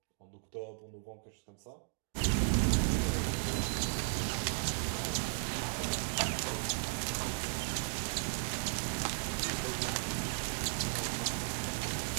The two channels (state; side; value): silent; left; digital silence